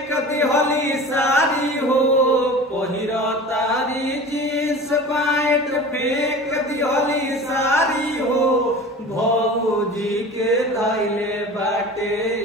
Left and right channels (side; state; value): both; normal; correlation 0.37